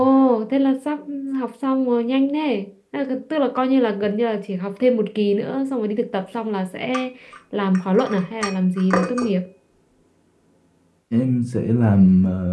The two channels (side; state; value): both; identical; correlation 1.00